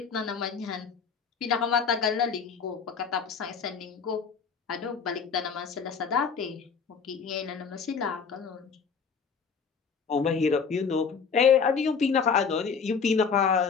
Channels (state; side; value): quieter; right; 5.9 dB